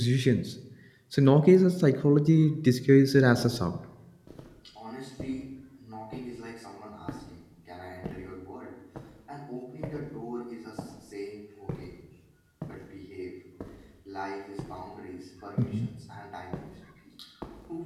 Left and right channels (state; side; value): identical; both; correlation 1.00